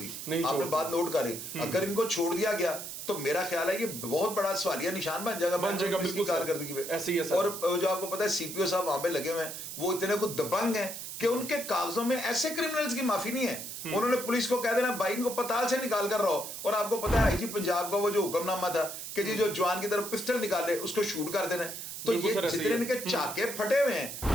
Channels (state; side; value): noise; right; hiss, 8 dB below the sound